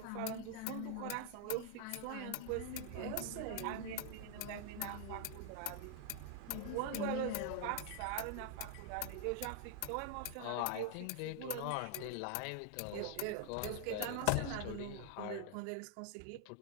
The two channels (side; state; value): both; different; correlation 0.00